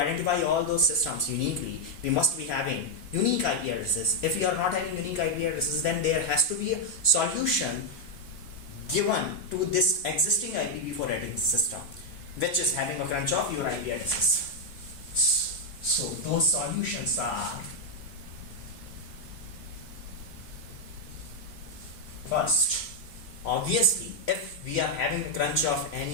all those systems uniquely, we must be having unique IP addresses. If we are not having unique IP addresses, then there has to be a solution given to this existing IPv4 addressing system, which is having a crunch of your IP addresses. So those solutions are: first, obviously, if we are having a crunch of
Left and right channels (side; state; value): right; late; 3.1 ms